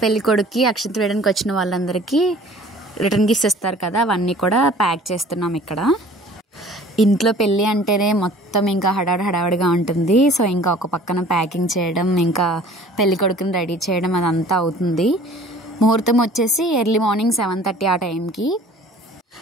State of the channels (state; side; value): normal; both; correlation 0.49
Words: పెళ్ళికొడుకుకి అక్షంతలు వేయడానికి వచ్చిన వాళ్ళందరికీ రిటర్న్ గిఫ్ట్స్ ఇస్తారు కదా, అవన్నీ కూడా ప్యాక్ చేస్తున్నాం ఇక్కడ. ఇంట్లో పెళ్ళి అంటేనే మొత్తం ఇంకా హడావిడిగా ఉంటుంది. సో ఇంకా ఒక పక్కన ప్యాకింగ్ చేయడం, ఇంకా పెళ్ళికొడుకుని రెడీ చేయడం అదంతా అవుతుంది. ముహూర్తం వచ్చేసి ఎర్లీ మార్నింగ్ 7:30 ఆ టైంకి.